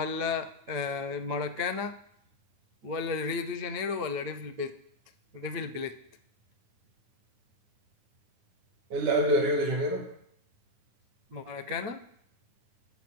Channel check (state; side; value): late; left; 8.9 ms